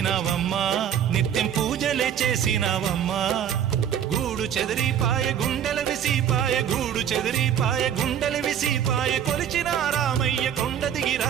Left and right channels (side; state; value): left; quieter; 9.2 dB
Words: నిత్యం పూజలే చేసినావమ్మా గూడు చెదిరిపాయ గుండెల విసిపాయ గూడు చెదిరిపాయ గుండెల విసిపాయ కొలిచిన రామయ్య కొండ